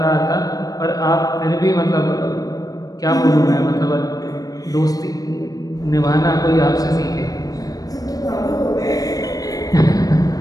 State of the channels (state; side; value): late; right; 0.18 ms